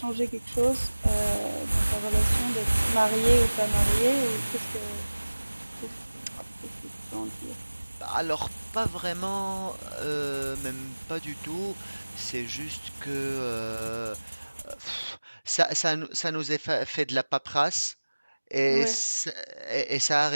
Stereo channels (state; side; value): inverted; both; correlation -1.00